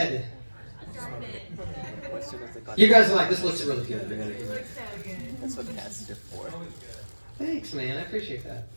You guys are like, this looks really good. That's what tests are for. Thanks, man. I appreciate that.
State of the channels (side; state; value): both; inverted; correlation -1.00